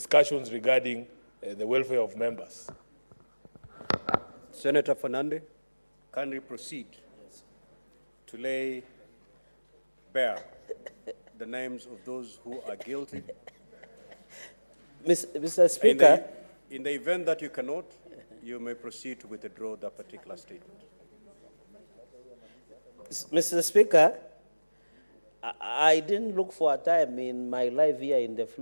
regarding the welfare of members? Senator Fernandi, can we proceed to lay bare the names of those who are guilty? Mr. Speaker. In the event that you cannot, you may proceed to withdraw that particular statement. Mr. Speaker, I didn't look for a time in my life here in the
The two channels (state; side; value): inverted; both; correlation -1.00